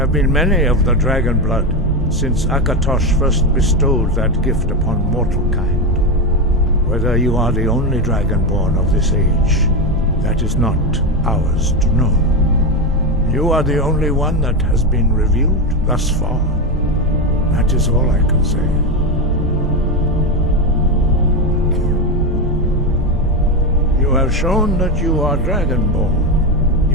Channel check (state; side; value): normal; both; correlation 0.13